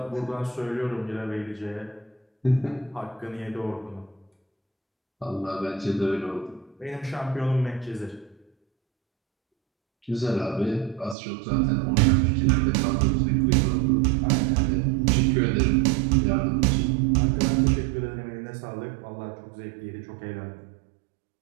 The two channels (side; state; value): left; drops out; at 11.2 s